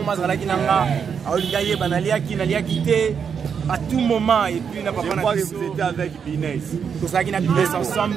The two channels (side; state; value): left; quieter; 6.9 dB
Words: à tout moment, et puis vous étiez avec Binès. Tout ça qui n'a Binès